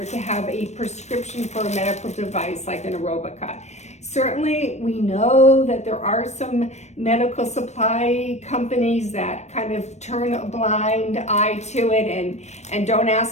to have a prescription for a medical device like an Aerobika. Certainly, we know that there are some medical supply companies that kind of turn a blind eye to it and don't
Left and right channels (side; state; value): right; late; 0.32 ms